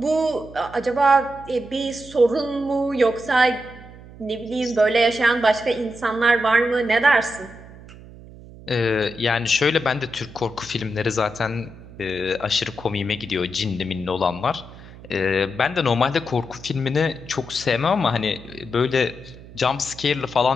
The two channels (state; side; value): noise; right; hum, 18 dB below the sound